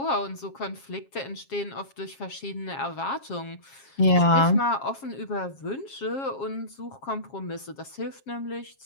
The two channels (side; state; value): right; late; 7.4 ms